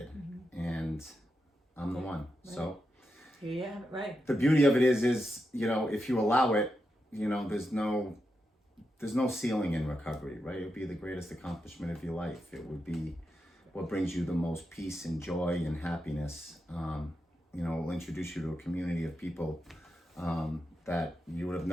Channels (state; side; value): normal; both; correlation 0.87